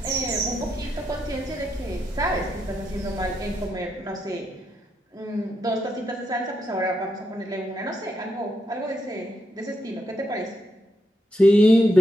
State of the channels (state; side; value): normal; both; correlation 0.81